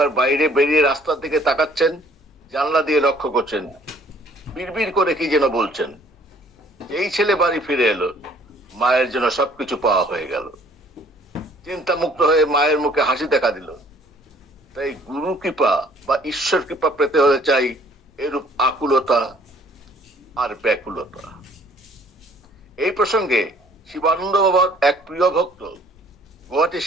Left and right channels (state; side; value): normal; both; correlation 0.58